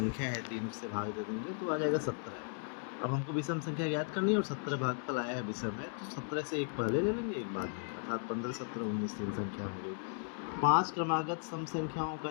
है 3 उससे भाग दे देंगे तो आ जाएगा 17। अब हमको विषम संख्या ज्ञात करनी है और 17 भागफल आया है विषम है, तो 17 से एक पहले ले लेंगे एक बाद में, अर्थात 15 17 19 3 संख्या हो गई। 5 क्रमागत सम संख्याओं का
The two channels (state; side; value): silent; right; 54 dB below the other